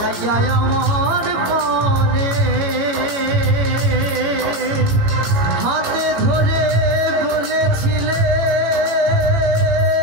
আমার পানে হাতে ধরে বলেছিলে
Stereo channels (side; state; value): left; late; 18 ms